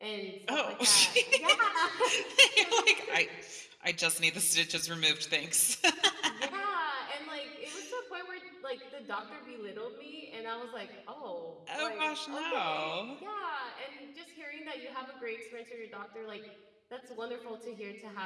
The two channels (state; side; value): identical; both; correlation 1.00